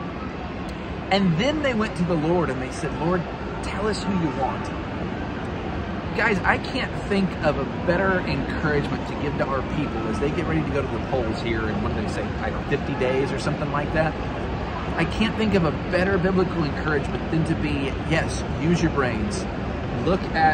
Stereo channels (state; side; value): identical; both; correlation 1.00